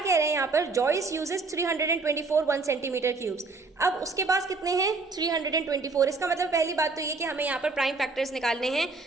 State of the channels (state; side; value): quieter; left; 3.9 dB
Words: रहे हैं यहाँ पर, जॉइस यूजेस 324 1 सेंटीमीटर क्यूब्स। अब उसके पास कितने हैं, 324। इसका मतलब पहली बात तो ये कि हमें यहाँ पर प्राइम फैक्टर्स निकालने हैं